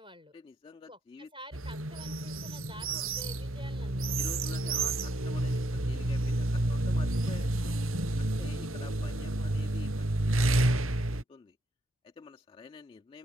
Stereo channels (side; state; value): both; normal; correlation 0.76